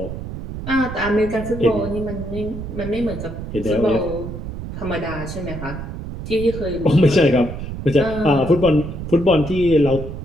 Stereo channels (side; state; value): right; noise; rumble, 8 dB below the sound